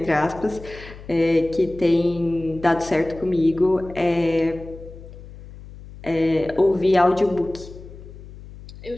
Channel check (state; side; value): noise; left; hum, 16 dB below the sound